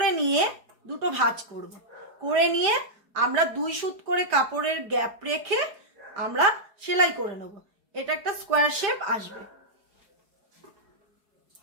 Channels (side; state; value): left; late; 4.7 ms